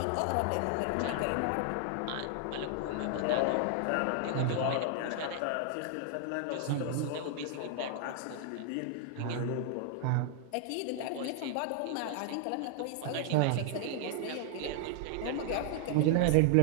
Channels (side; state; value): both; different; correlation 0.00